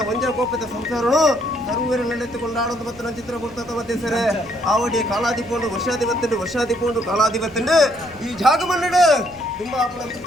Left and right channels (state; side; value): noise; left; rumble, 24 dB below the sound